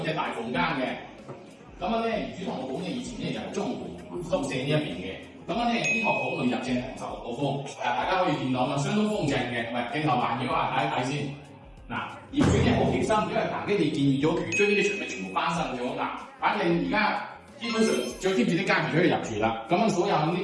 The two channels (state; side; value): identical; both; correlation 1.00